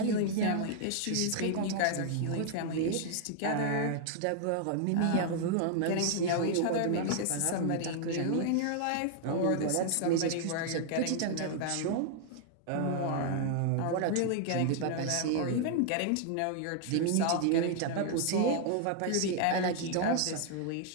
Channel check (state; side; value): different; both; correlation 0.00